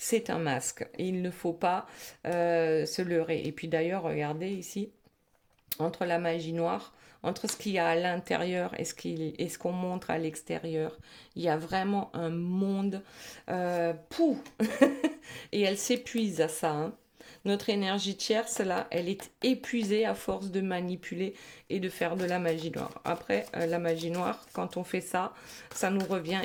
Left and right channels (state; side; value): identical; both; correlation 1.00